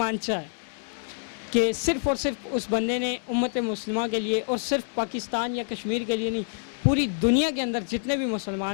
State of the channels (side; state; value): right; silent; digital silence